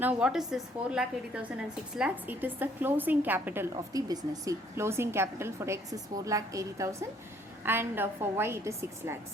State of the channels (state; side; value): normal; both; correlation 0.63